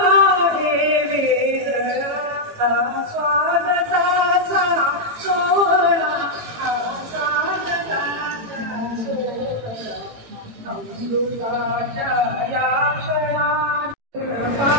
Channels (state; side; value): late; left; 18 ms